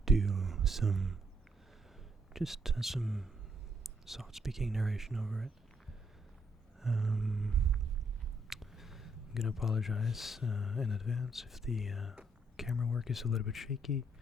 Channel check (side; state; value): both; normal; correlation 0.73